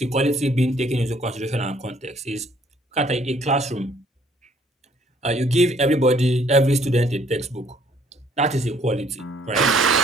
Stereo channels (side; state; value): both; normal; correlation 0.63